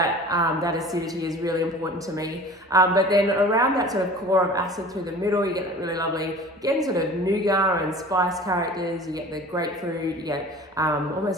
acidity is really important to me. But then around that sort of core of acid through the middle, you get that really lovely, again, sort of nougat and spice characters. You get the grapefruit, you get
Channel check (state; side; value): normal; both; correlation 0.42